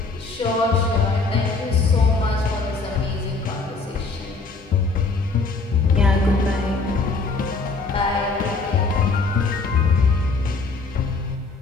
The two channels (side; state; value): right; quieter; 3.9 dB